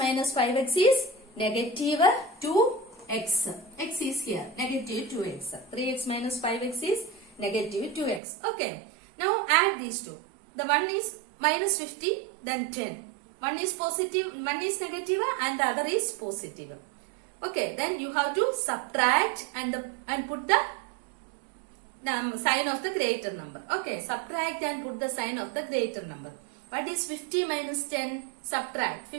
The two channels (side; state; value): left; drops out; at 8.2 s